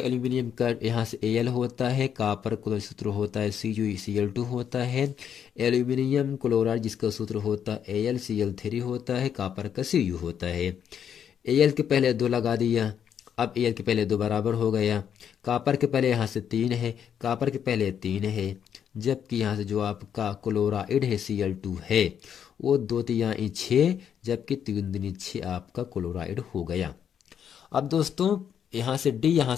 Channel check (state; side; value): quieter; right; 8.5 dB